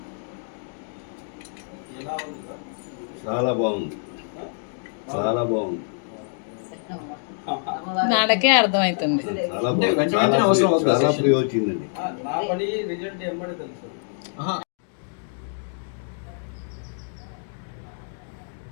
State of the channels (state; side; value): silent; right; digital silence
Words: ఎలా ఉంది సార్? చాలా బాగుంది, చాలా బాగుంది. నాకే అర్థమవుతుంది. చాలా ఫ్రీ వచ్చిందండి. నా పని రిజల్ట్ ఏమని తెలుసు.